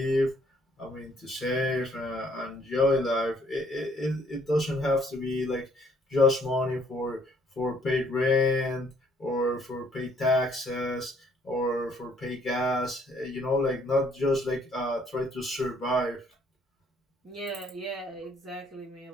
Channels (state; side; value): normal; both; correlation 0.64